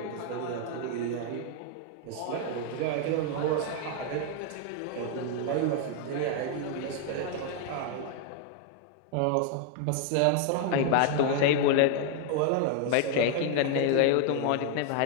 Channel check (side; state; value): both; different; correlation 0.00